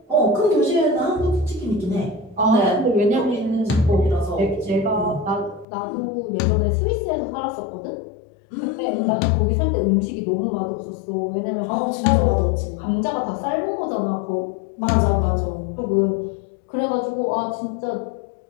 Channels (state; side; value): drops out; right; at 5.7 s